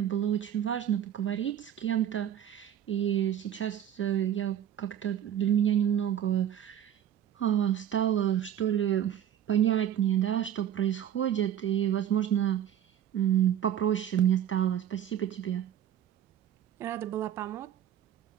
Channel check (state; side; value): quieter; left; 10.3 dB